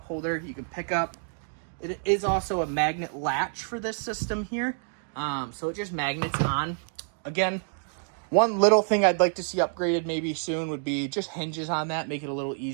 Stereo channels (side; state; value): left; silent; digital silence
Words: holder you can pick up. It is also a magnet latch for this system here. So it just magnets on. Again, one little thing I'd like to see upgraded maybe soon would be just hinges on that. Make it a little